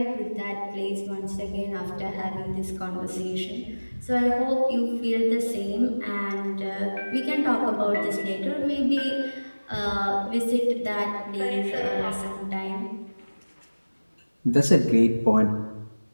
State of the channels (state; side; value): inverted; both; correlation -1.00